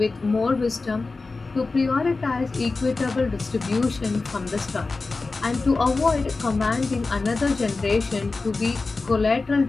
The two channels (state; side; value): quieter; right; 3.7 dB